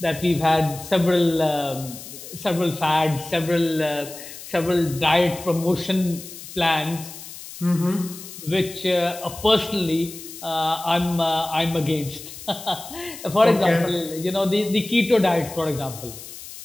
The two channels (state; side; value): noise; left; hiss, 14 dB below the sound